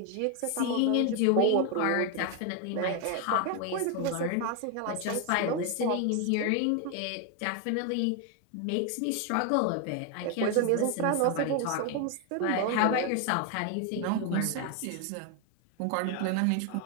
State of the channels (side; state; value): both; different; correlation 0.01